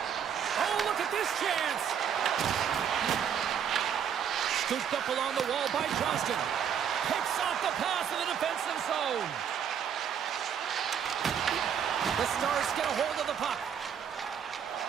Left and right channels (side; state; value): left; quieter; 8.1 dB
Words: Oh, look at this chance. Scooped up along the wall by Johnston. Picks off the pass in the defensive zone. The Stars get a hold of the puck.